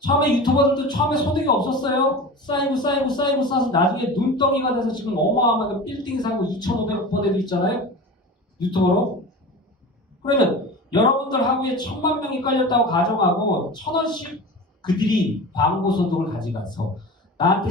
유튜버들도 처음에 소득이 없었어요. 쌓이고 쌓아서 나중에 눈덩이가 돼서 지금 어마어마하게 빌딩 사고 2,500억 번 애도 있잖아요. 유튜버로. 그러면 여러분들 하루에 1,000만 명이 깔렸다고 가정하고 1,000원씩 그들이 광고 소득을 가져가서 나한테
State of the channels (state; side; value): normal; both; correlation 0.32